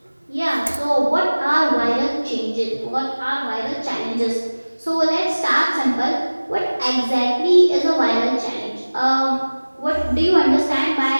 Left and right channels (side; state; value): both; inverted; correlation -1.00